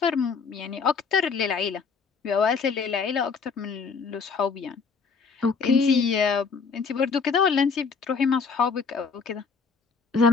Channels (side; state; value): right; quieter; 5.2 dB